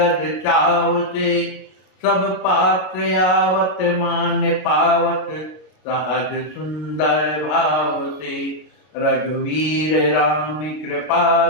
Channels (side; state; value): right; late; 33 ms